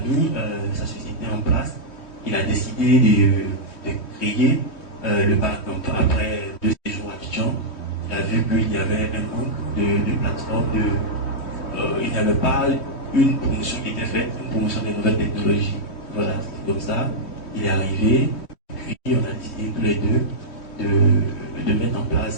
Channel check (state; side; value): late; right; 3.1 ms